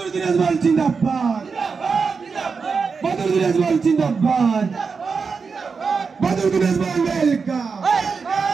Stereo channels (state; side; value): quieter; left; 5.2 dB